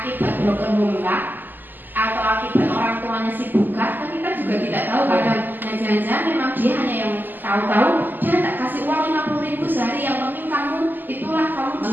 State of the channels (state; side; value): late; left; 0.089 ms